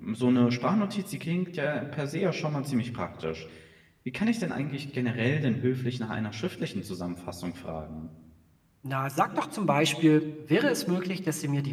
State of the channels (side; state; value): both; identical; correlation 1.00